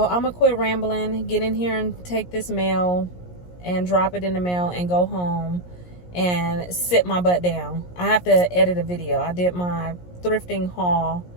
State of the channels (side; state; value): right; late; 17 ms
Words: I'm going to quit rambling, get in here and take this mail and drop it in the mail and go home and sit my butt down. I have to edit a video. I did my thrifting haul